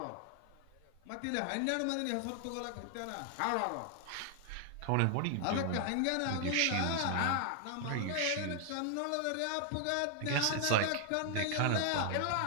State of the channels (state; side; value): different; both; correlation 0.00